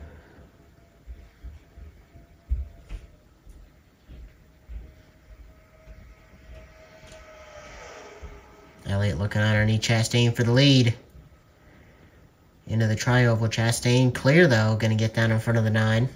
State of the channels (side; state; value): both; identical; correlation 1.00